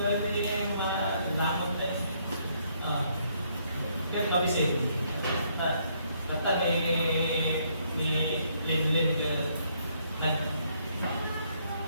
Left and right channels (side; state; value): both; inverted; correlation -0.70